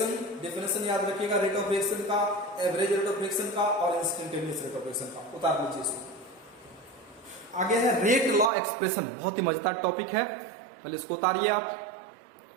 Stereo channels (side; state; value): left; drops out; at 8.5 s